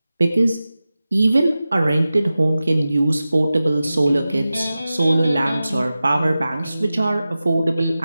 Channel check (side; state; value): both; inverted; correlation -0.95